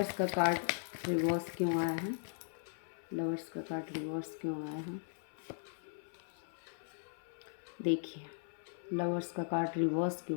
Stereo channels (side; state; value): right; silent; 52 dB below the other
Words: का कार्ड रिवर्स क्यों आया है? लवर्स का कार्ड रिवर्स क्यों आया है? देखिए, लवर्स का कार्ड रिवर्स